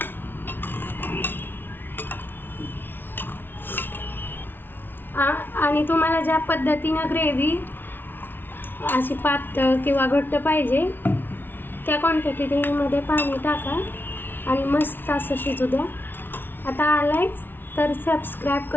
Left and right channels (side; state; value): right; late; 0.10 ms